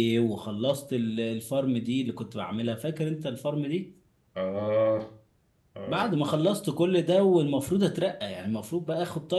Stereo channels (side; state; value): both; identical; correlation 1.00